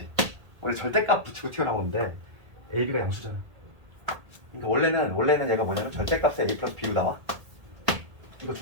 원래 절대값 붙이고 튀어나오는데 a, b가 양수잖아. 그러니까 원래는 얘가 뭐냐면 절대값에 a 플러스 b로 나와. 이거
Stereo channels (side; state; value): left; late; 1.8 ms